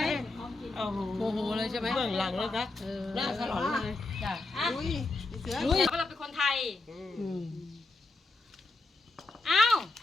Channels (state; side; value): quieter; right; 3.2 dB